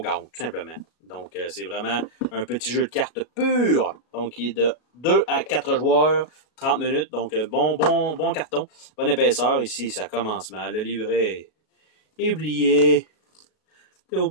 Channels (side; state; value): right; late; 37 ms